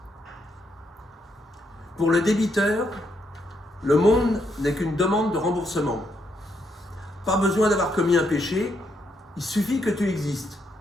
Pour le débiteur, le monde n'est qu'une demande de remboursement. Pas besoin d'avoir commis un péché, il suffit que tu existes.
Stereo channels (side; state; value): both; normal; correlation 0.77